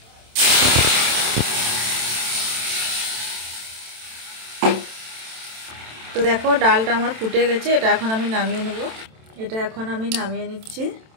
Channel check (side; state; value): left; late; 27 ms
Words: তো দেখো ডালটা আমার ফুটে গেছে, এটা এখন আমি নামিয়ে নেব। এটা এখন আমি নামিয়ে নিচ্ছি।